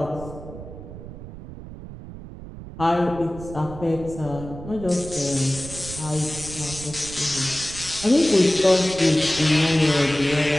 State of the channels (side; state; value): right; noise; rumble, 13 dB below the sound